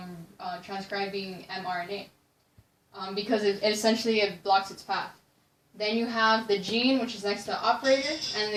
transcribing mRNA because it essentially blocks its path. Then you have the gene, which is next to the operator, and in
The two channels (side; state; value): both; identical; correlation 1.00